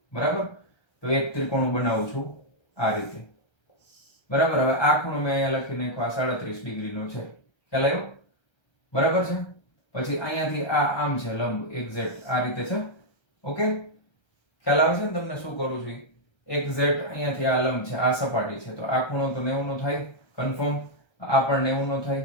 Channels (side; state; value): right; late; 1.3 ms